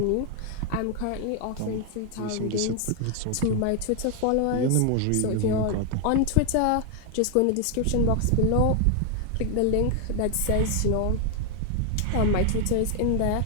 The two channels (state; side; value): different; both; correlation 0.00